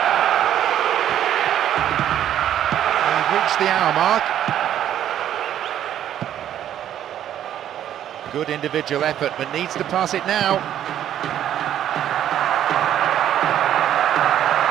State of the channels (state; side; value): quieter; left; 10.9 dB